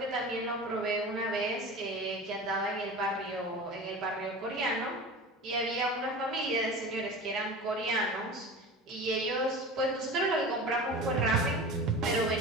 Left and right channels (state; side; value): normal; both; correlation 0.33